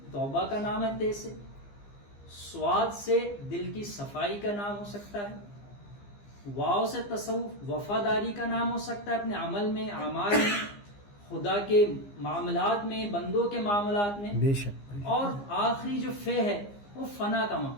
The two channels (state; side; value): late; right; 15 ms